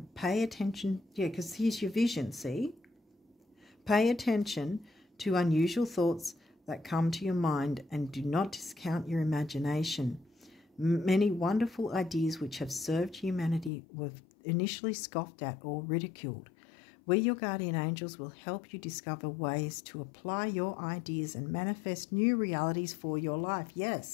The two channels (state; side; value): drops out; right; at 13.7 s